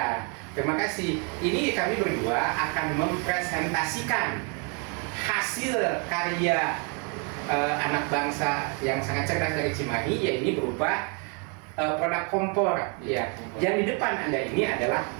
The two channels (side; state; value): left; quieter; 34.9 dB